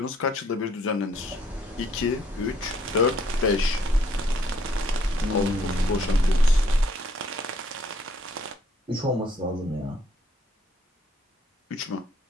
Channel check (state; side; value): normal; both; correlation 0.65